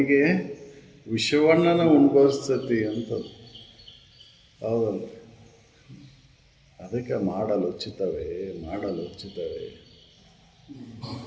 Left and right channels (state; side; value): identical; both; correlation 1.00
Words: ವಿಷವಣ್ಣನ ಉಣ್ಬರ್ಸ್ತತಿ ಅಂತ. ಹೌದಲ್ಲ? ಅದಕ್ಕೆ ಮಾಡಲು ಉಚಿತವೇ